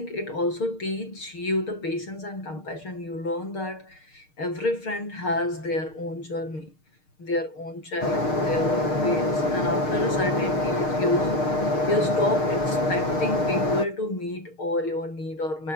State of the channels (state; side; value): late; right; 6.5 ms